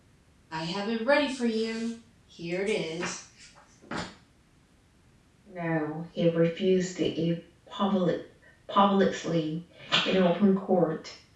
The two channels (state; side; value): identical; both; correlation 1.00